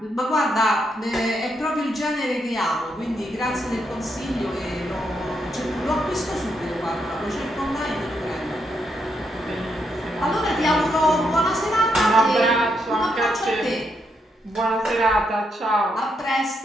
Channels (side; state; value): both; normal; correlation 0.79